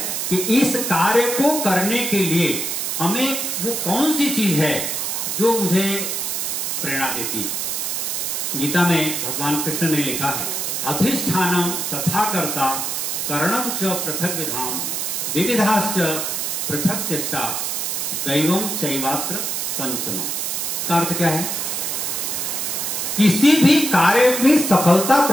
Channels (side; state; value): right; noise; hiss, 1 dB below the sound